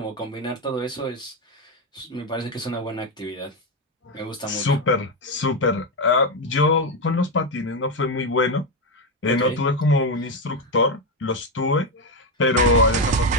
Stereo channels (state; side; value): normal; both; correlation 0.08